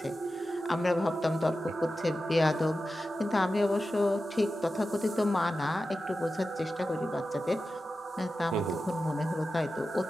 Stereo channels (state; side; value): normal; both; correlation 0.92